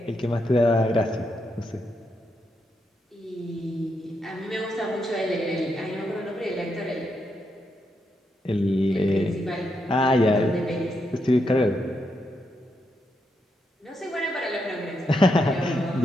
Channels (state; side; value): normal; both; correlation 0.81